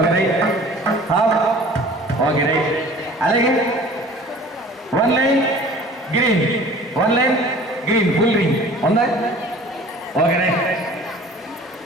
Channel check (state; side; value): normal; both; correlation 0.46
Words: right, half. Okay right. అలాగే 1 line green, 1 line green full ring ఉందా? Okay right.